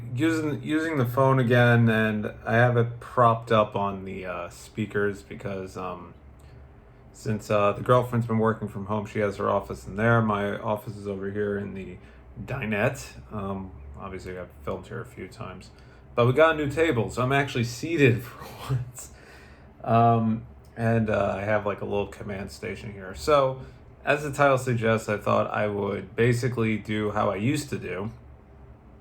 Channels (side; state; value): both; identical; correlation 1.00